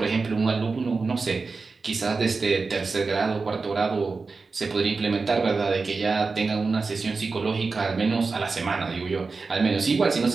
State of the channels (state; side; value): quieter; left; 4.3 dB